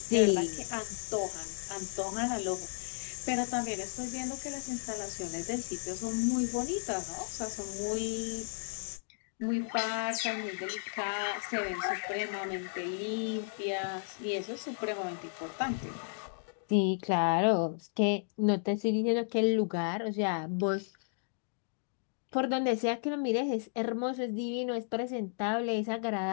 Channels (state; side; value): silent; right; digital silence